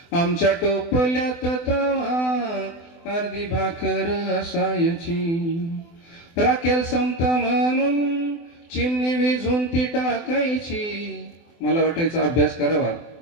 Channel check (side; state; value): right; late; 24 ms